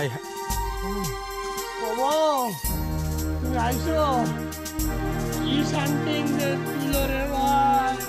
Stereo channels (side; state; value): both; identical; correlation 1.00